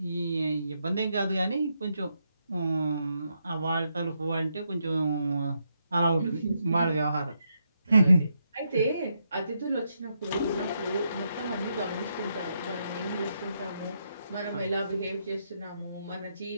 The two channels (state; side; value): inverted; both; correlation -0.80